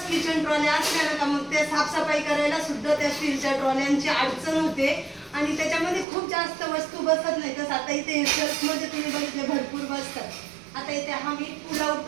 किचन ट्रॉल्या असल्या ना का मग ते साफसफाई करायला सुद्धा त्या स्टीलच्या ट्रॉल्यांची अडचण होते आणि त्याच्यामध्ये खूप जास्त वस्तू बसत नाही. तसं आता इथे सेल्फमध्ये तुम्ही बघितले भरपूर बसतात. आता इथे हा मी पुलाव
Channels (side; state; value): left; drops out; at 6.1 s